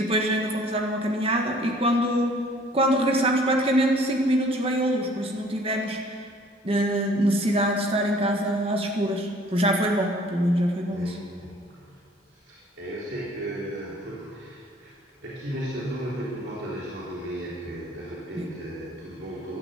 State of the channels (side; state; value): both; normal; correlation 0.55